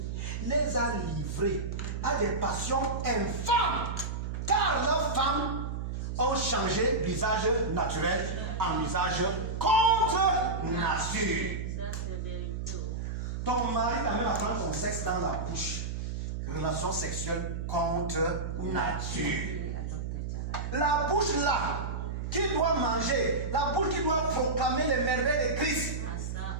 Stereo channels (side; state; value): right; noise; hum, 4 dB below the sound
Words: les a livrés à des passions infâmes, car leurs femmes ont changé l'usage naturel en usage contre nature. Ton mari t'amène à prendre ton sexe dans la bouche. Relation sexuelle contre nature. La bouche là, qui doit manger, la bouche qui doit proclamer les merveilles de Christ,